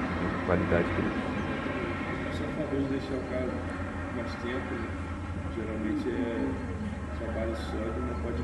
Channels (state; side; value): identical; both; correlation 1.00